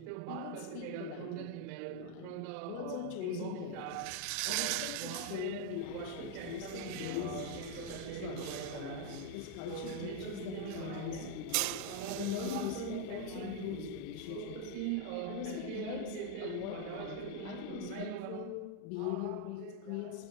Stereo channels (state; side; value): different; both; correlation 0.01